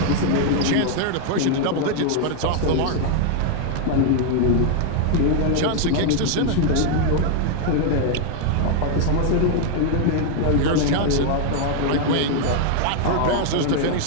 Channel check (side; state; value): both; different; correlation 0.00